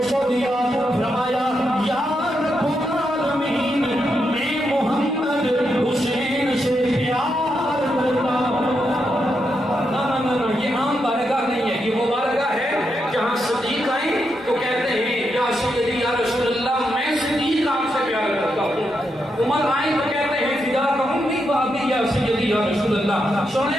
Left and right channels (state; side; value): normal; both; correlation 0.83